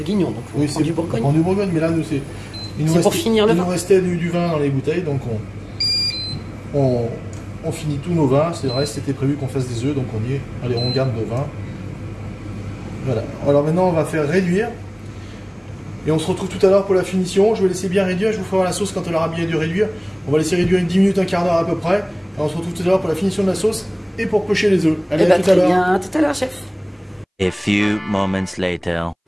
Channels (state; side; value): identical; both; correlation 1.00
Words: donc on prend du Bourgogne. On prend du Bourgogne, mais là, nous, c'est... C'est pour finir le vin. Il nous restait du vin dans les bouteilles, donc on finit tous nos vins. C'est vrai, c'était prévu qu'on fasse des œufs, donc on y est. Allez, on garde nos vins. Voilà. Alors maintenant, on va faire réduire. Et on se retrouve tout à l'heure pour la finition. Je vais laisser bien réduire. Je vous ferai voir la sauce quand elle aura bien dû réduire. On va laisser réduire une 10 minutes, un quart d'heure à peu près. Et on se retrouve tout à l'heure pour la finition de la sauce et pour pocher les œufs. Allez, à tout à l'heure. Bien, tout à l'heure, chef. A few moments later.